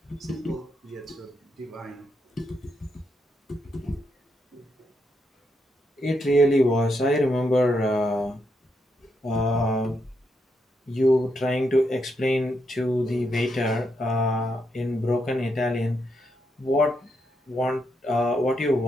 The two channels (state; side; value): normal; both; correlation 0.81